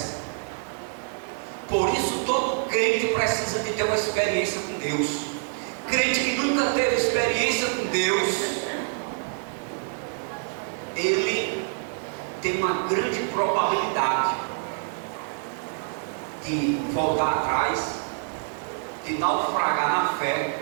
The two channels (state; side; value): silent; left; 61 dB below the other